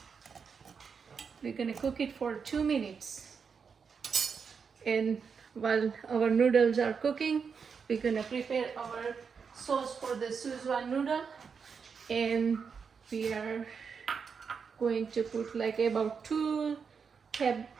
We're going to cook it for 2 minutes. And while our noodles are cooking, we're going to prepare our sauce for the Schezwan noodle. And we are going to put like about 2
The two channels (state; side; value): quieter; left; 6.0 dB